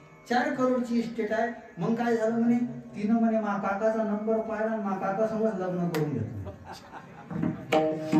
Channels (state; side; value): identical; both; correlation 1.00